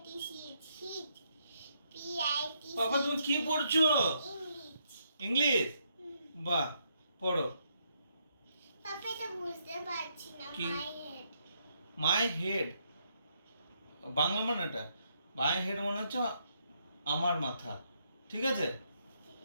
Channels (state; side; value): inverted; both; correlation -0.75